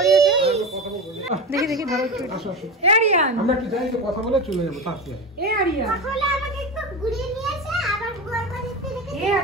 আছে। দেখি ধরো একটু। এ আরিয়ান আমরা একটু যাই, কথা বলে চলে যাবো তাড়াতাড়ি। এ আরিয়ান তাহলে আমাকে একটু ঘুরিয়ে নিয়ে এসে আবার বুয়ার বাড়িতে রেখে এ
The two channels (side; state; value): both; normal; correlation 0.23